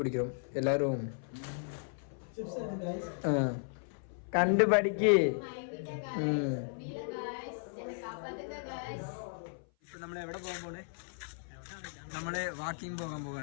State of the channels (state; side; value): silent; right; 54 dB below the other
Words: எல்லாரும். കണ്ടുപഠിക്ക്. ഇപ്പൊ നമ്മൾ എവിടെ പോകാൻ പോണേ? നമ്മള് വാക്കിംഗ് പോകാൻ